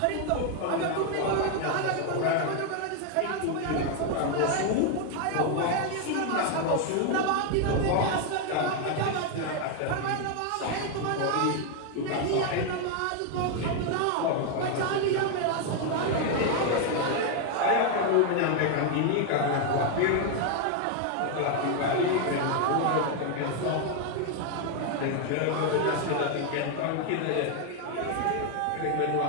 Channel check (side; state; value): both; different; correlation 0.01